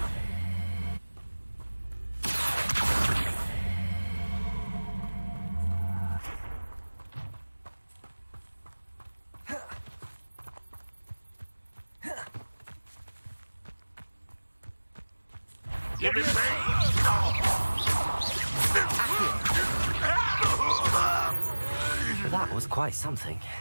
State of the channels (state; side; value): inverted; both; correlation -1.00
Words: Give it back! That was quite something.